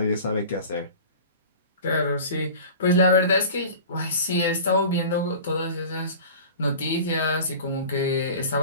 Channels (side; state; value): both; inverted; correlation -0.38